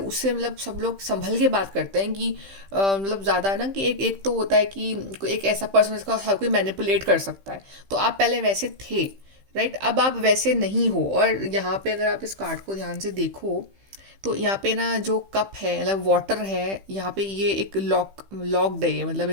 मतलब सब लोग संभल के बात करते हैं कि मतलब ज़्यादा ना कि एक तो होता है कि एक ऐसा पर्सन जिसको हर कोई मैनिपुलेट कर सकता है। तो आप पहले वैसे थे, राइट, अब आप वैसे नहीं हो। और यहाँ पे अगर आप इस कार्ड को ध्यान से देखो तो यहाँ पे ना जो कप है, मतलब वाटर है, यहाँ पे ये एक लॉक्ड है, मतलब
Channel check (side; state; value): left; late; 15 ms